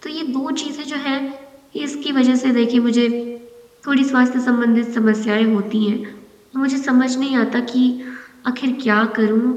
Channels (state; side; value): identical; both; correlation 1.00